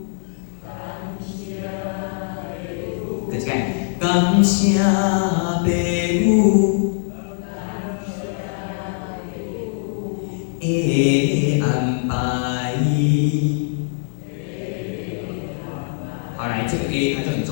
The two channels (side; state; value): right; silent; digital silence